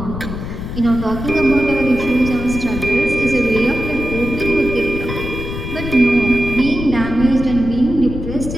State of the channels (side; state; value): left; noise; rumble, 7 dB below the sound